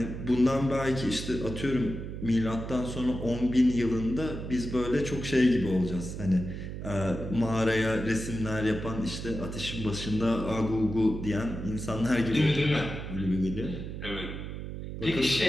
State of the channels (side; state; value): right; noise; hum, 7 dB below the sound